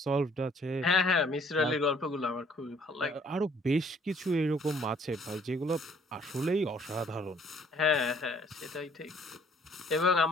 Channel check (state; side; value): normal; both; correlation 0.60